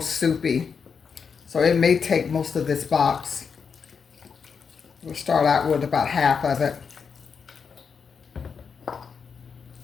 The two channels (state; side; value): quieter; right; 6.0 dB